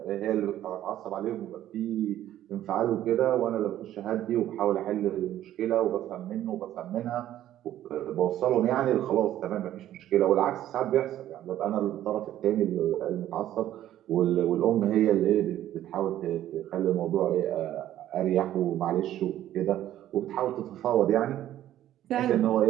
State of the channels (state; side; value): quieter; left; 12.6 dB